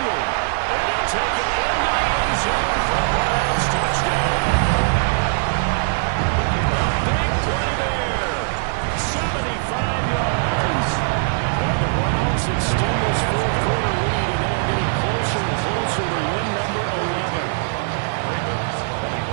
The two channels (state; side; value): silent; left; 65 dB below the other